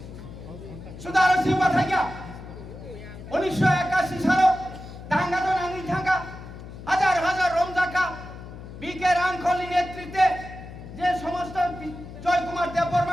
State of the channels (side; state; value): left; noise; hum, 13 dB below the sound